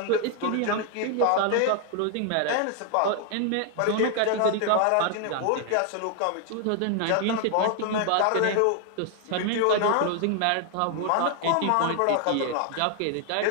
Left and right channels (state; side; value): different; both; correlation 0.00